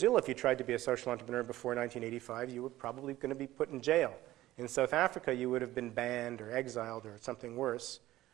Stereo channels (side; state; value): left; quieter; 15.6 dB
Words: if you tried to be a social entrepreneur before 1985, you were probably going to be put in jail. In South Africa, you would have been banned or exiled or something worse.